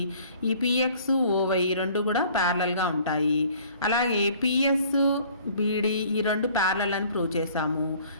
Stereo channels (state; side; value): inverted; both; correlation -0.54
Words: ఈ PX OY రెండు కూడా ప్యారలల్గా ఉంటాయి. అలాగే PS BD ఈ రెండు ప్యారలల్ అని ప్రూవ్ చేసాము.